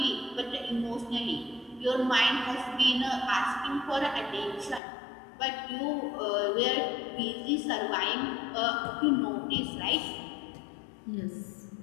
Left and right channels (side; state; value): right; drops out; at 4.8 s